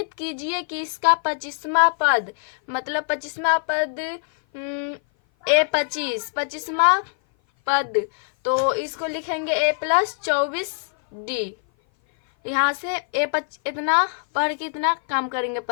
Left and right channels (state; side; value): silent; right; 57 dB below the other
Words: कीजिए कि इसका 25वां पद, मतलब 25वां पद A25वां पद, तो इसको लिखेंगे A प्लस 24D। यहाँ से इतना पढ़ के इतना काम करेंगे